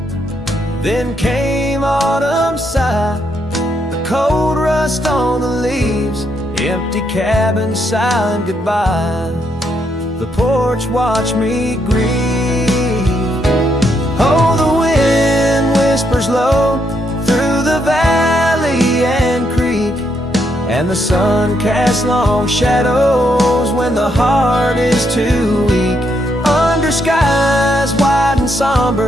Then came autumn sigh, the cold rust on the leaves, empty cabin, silent goodbye. The porch watched me grieve. Oh, the wind whispers low through the valley and creek, and the sun casts long shadows when the heart is too weak. Under skies wide and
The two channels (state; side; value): normal; both; correlation 0.77